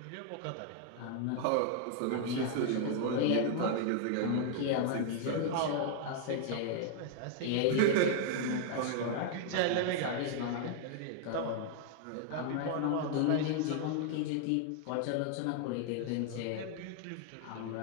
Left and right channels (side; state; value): both; different; correlation 0.00